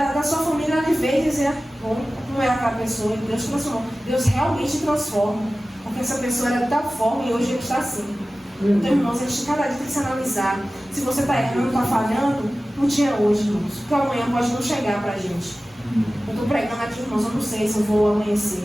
sua família ali ver e dizer, como era aquela pessoa, e Deus transformou. Deus realmente transforma. Porque essa pessoa era de tal forma e hoje ele está assim. Então, irmãos, a gente cada dia tem que se analisar. Se você está errando, está falhando, um dia hoje, irmãos. Porque amanhã pode não chegar para a gente. Eu estou pregando aqui, irmãos, eu não sei se eu vou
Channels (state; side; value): normal; both; correlation 0.96